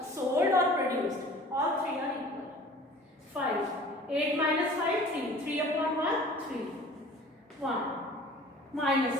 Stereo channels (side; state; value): both; normal; correlation 0.46